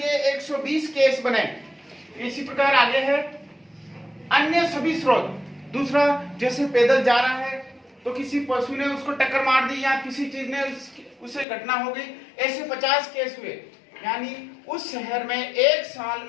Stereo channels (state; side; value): drops out; right; at 11.5 s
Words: 120 केस बने। इसी प्रकार आगे है अन्य सभी स्रोत। दूसरा, जैसे पैदल जा रहा है तो किसी पशु ने उसको टक्कर मार दी या किसी चीज ने उसे घटना हो गई, ऐसे 50 केस हुए। यानी उस शहर में एक साल